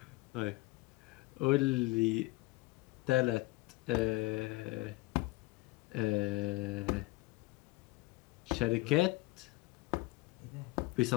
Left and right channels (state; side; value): quieter; right; 21.2 dB